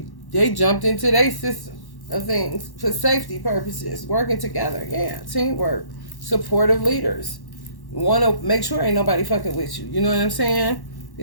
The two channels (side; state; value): right; late; 1.1 ms